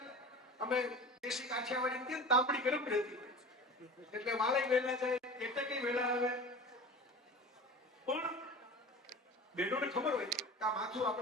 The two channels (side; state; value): both; normal; correlation 0.35